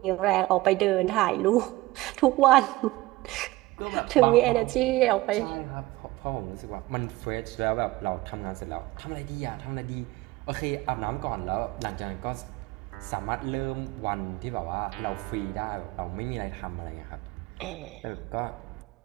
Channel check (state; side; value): quieter; left; 19.3 dB